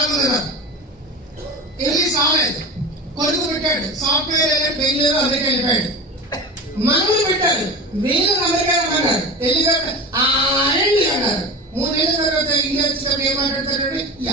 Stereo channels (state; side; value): normal; both; correlation 0.29